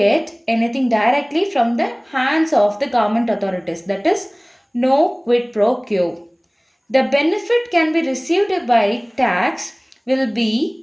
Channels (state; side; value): identical; both; correlation 1.00